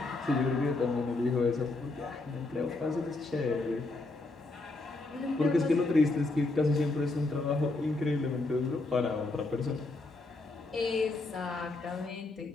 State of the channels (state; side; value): quieter; right; 3.1 dB